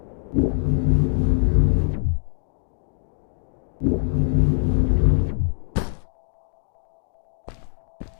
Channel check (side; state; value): right; silent; digital silence